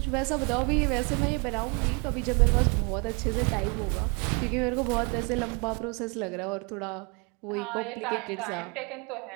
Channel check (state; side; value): quieter; left; 32.4 dB